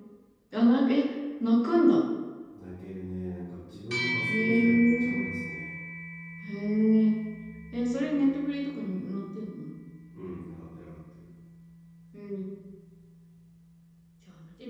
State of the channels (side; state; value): both; identical; correlation 1.00